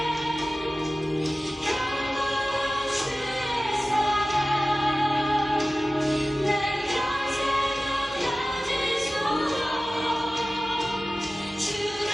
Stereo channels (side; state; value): both; normal; correlation 0.96